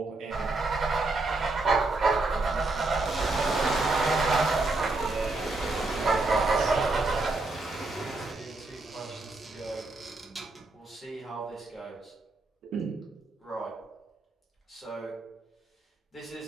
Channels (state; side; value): quieter; left; 3.2 dB